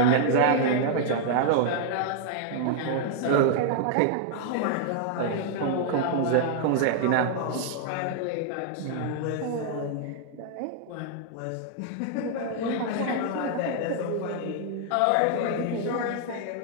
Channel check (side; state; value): both; different; correlation 0.00